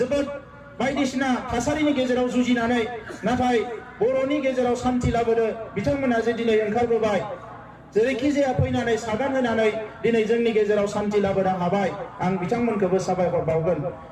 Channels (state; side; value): identical; both; correlation 1.00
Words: बायदिसिना थासारिनि गेजेराव जुजिनानै नाथाय बर'नि गेजेराव शान्ति लाबोनो बिथांमोना जे दिनै ओंखारबोबाय जेरैखि जाया फैनानै सागान होनानै दिनै जोंनि गेजेराव शान्ति लाबोनो हाबाय आं बिथांमोनखौबो साबायखर बावगोन